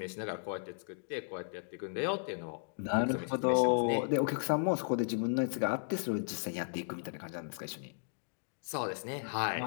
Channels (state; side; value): silent; right; digital silence